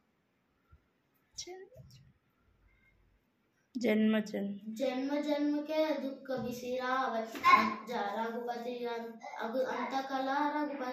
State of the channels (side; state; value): both; identical; correlation 1.00